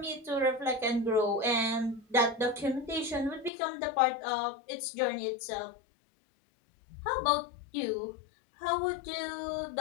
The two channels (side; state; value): right; drops out; at 3.5 s